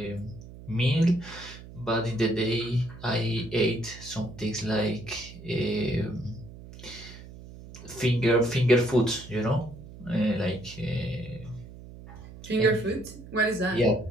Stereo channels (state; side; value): noise; right; hum, 16 dB below the sound